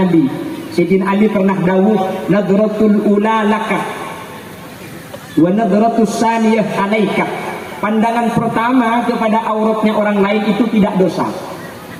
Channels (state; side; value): identical; both; correlation 1.00